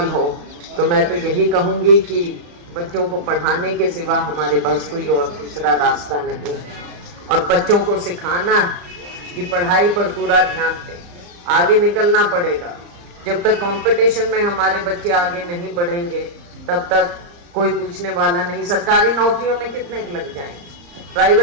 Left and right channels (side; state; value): left; late; 34 ms